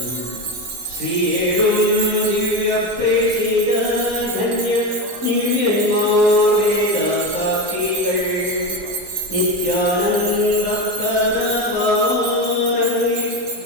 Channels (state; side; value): late; left; 16 ms